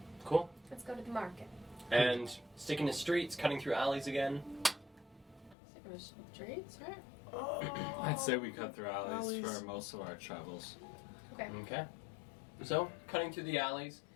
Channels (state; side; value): drops out; right; at 5.6 s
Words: Cool. Let's go to the market. And sticking to streets, cutting through alleys again. Sticking to streets, right? I'd say we cut through alleys Alleys. for most of our travels. Okay. Okay. So, cutting through the alleys